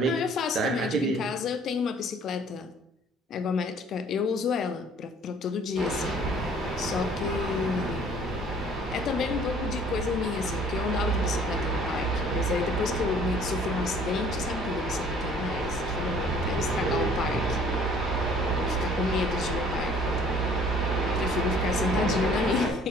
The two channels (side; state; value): both; normal; correlation 0.55